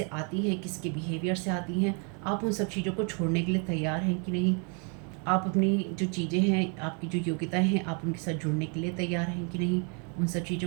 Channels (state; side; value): quieter; left; 37.2 dB